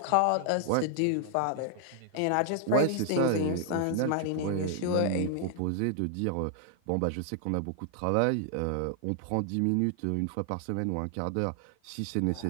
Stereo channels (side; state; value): both; different; correlation 0.00